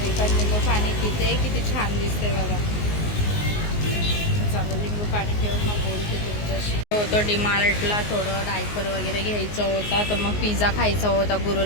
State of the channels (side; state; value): right; late; 19 ms